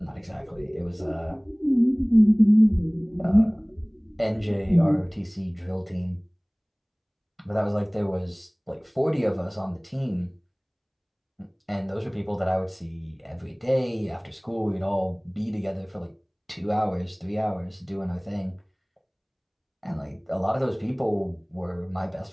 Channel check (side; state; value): both; identical; correlation 1.00